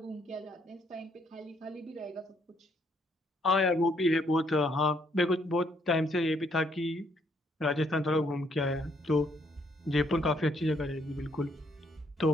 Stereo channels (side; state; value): both; normal; correlation 0.70